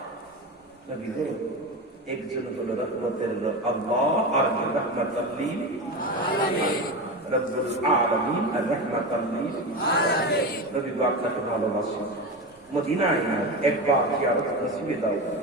একজন হলো রহমতের আল্লাহ আর রহমাতুল লিল আলামিন রব্বুল আলামিন আর রহমাতুল লিল আলামিন নবী আপনাকে ভালোবাসেন মদিনায় একবার জিয়ারত নসিবে দাও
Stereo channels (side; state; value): both; normal; correlation 0.22